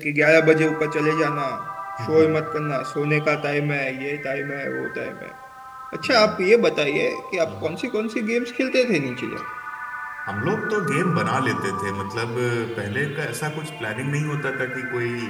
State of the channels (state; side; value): identical; both; correlation 1.00